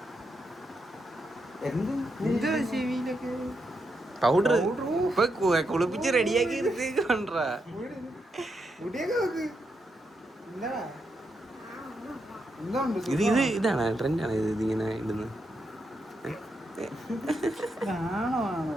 പൗഡർ ഇപ്പൊ കുളിപ്പിച്ച് റെഡിയാക്കി എടുത്തേക്കാണ്ടാ. ഇതാണ് ട്രെൻഡാണ് ഇതിങ്ങനെ ഇടുന്നത്.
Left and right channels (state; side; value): normal; both; correlation 0.83